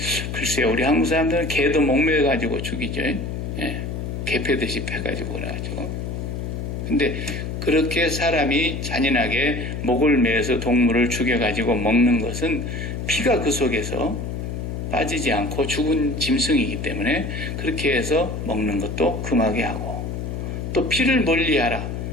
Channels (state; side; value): noise; left; hum, 5 dB below the sound